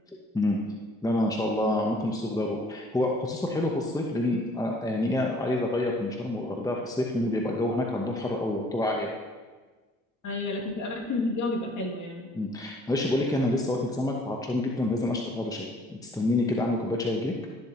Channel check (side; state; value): both; normal; correlation 0.58